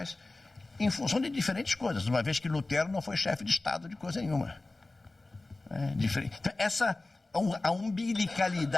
em função de diferentes coisas, uma vez que Lutero não foi chefe de Estado de coisa nenhuma. Então, a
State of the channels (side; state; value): right; quieter; 3.1 dB